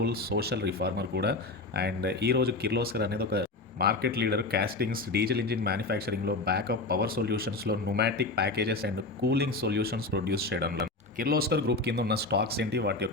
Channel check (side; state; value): right; quieter; 3.2 dB